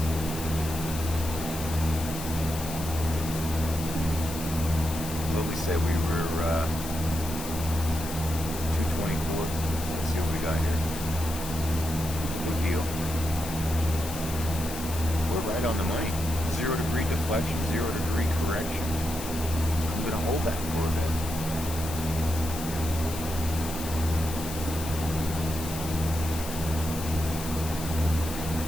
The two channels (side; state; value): left; noise; hiss, 10 dB below the sound